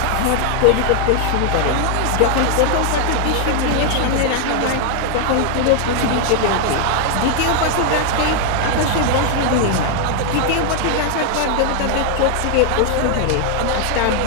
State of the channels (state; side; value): different; both; correlation 0.00